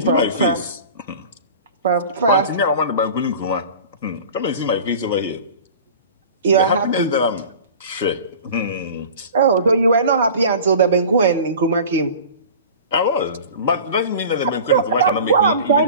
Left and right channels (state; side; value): inverted; both; correlation -0.39